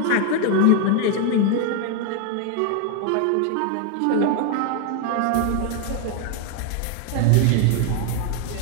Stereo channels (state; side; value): different; both; correlation 0.01